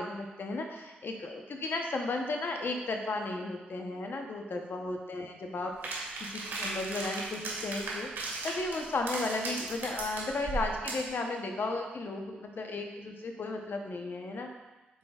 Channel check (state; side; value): normal; both; correlation 0.67